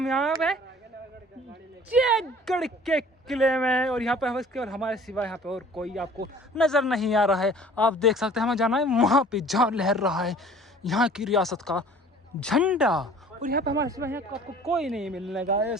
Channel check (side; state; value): both; normal; correlation 0.49